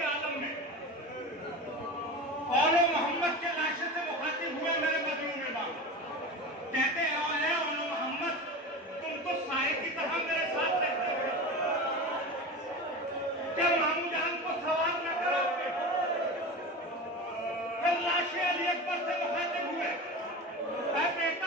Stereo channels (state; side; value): normal; both; correlation 0.29